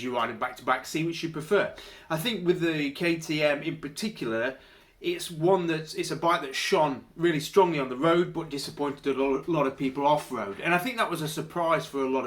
you ride them back to back, see which you prefer. I think with the KTM in particular, it's a bike that shone really strongly on the road, but disappointed a lot of people off-road. And I think that was a surprise for a lot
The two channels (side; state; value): both; identical; correlation 1.00